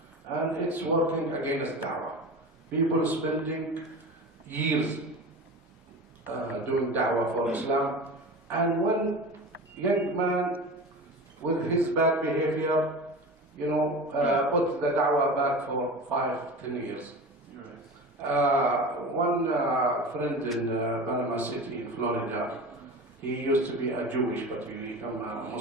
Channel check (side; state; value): both; normal; correlation 0.32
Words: And it's working against da'wah. People spending years doing da'wah for Islam. And one young man with his bad behavior, you know, put the da'wah back for 5-10 years. One friend in Panama City in Florida, he used to be a Jewish, but he became a